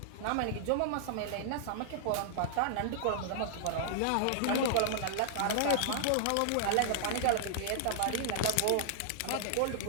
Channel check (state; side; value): different; both; correlation -0.01